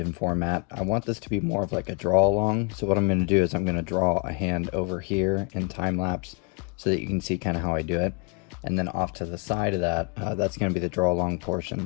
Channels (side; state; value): right; quieter; 34.4 dB